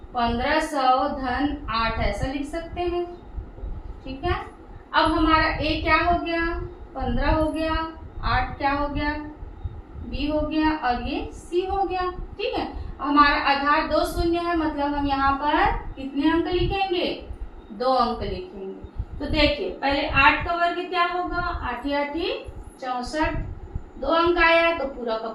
1500 धन 8 ऐसा लिख सकते हैं। ठीक है, अब हमारा ए क्या हो गया, 15 हो गया, 8 क्या हो गया, बी हो गया और ये सी हो गया। ठीक है, हमारा आधार 2 शून्य है, मतलब हम यहाँ पर कितने अंक लिखेंगे, 2 अंक लिखेंगे। तो देखिए पहले 8 का वर्ग क्या होगा, 8 8 64, 2 अंक आया तो पूरा का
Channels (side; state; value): both; identical; correlation 1.00